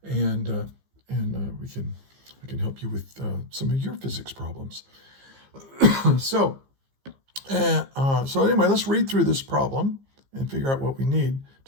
and we can help you with some of your physics problems. So anyway, let's read through this problem and figure out what we need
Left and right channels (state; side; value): late; left; 15 ms